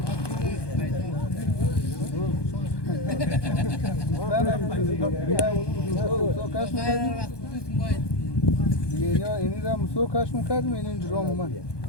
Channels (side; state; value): right; late; 1.2 ms